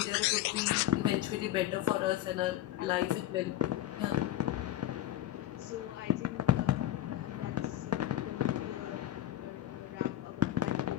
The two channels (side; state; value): right; quieter; 13.4 dB